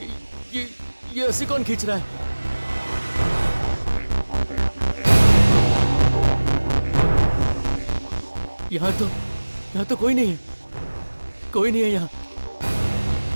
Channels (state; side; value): inverted; both; correlation -1.00